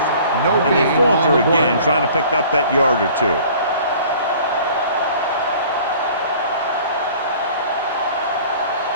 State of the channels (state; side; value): inverted; both; correlation -0.49